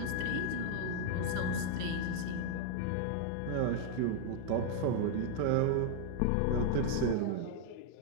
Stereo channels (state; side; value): different; both; correlation 0.00